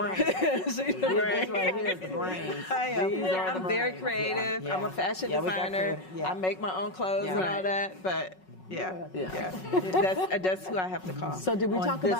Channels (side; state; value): right; late; 5.4 ms